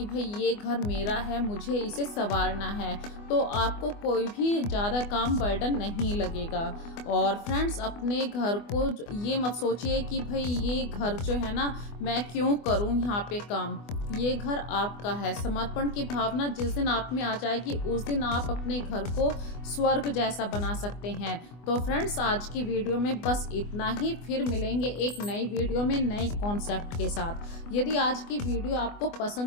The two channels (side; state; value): right; late; 24 ms